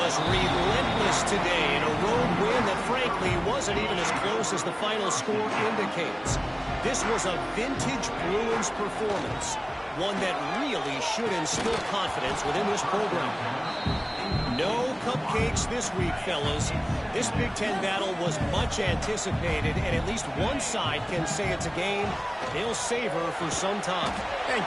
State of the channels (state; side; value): identical; both; correlation 1.00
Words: relentless today in a road win that frankly wasn't even as close as the final score indicates. This was a vintage Bruins performance. One that really should instill confidence within this program. No cupcakes this week, fellas. This Big Ten battle was much anticipated, and at least one side can say it's a game they'll savor for some time. And